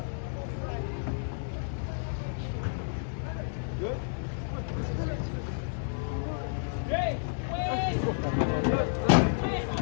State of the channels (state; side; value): silent; right; 55 dB below the other